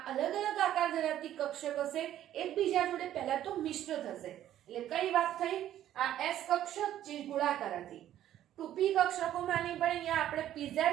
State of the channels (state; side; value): quieter; left; 12.0 dB